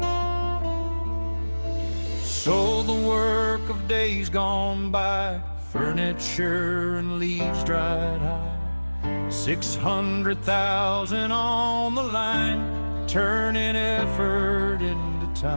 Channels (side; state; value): both; inverted; correlation -1.00